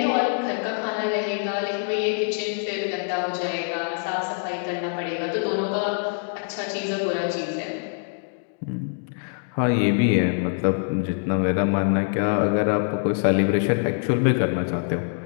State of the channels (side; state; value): right; silent; 59 dB below the other